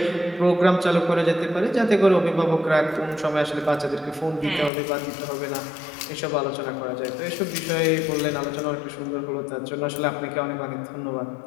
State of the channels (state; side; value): drops out; right; at 4.7 s